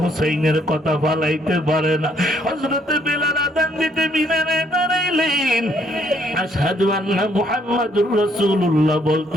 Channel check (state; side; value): normal; both; correlation 0.68